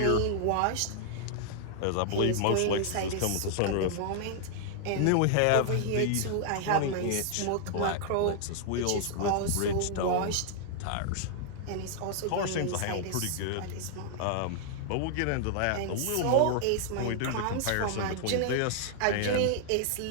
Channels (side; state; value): both; different; correlation -0.01